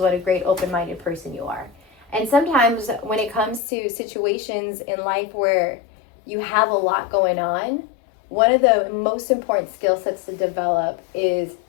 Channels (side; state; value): right; drops out; at 3.6 s